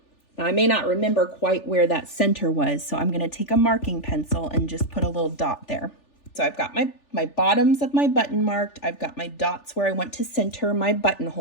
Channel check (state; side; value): late; right; 3.4 ms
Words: Now I may not remember quite where that center was, so I'm gonna take a marking pencil and just put a little dot there. So I've got my bottoms of my button marked. I've got my dots where I want to center my